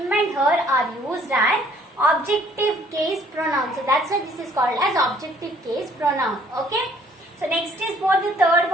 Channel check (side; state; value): both; normal; correlation 0.60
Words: and her are used as objective case pronoun. So that's why this is called as objective case pronoun. Okay. So next is what the third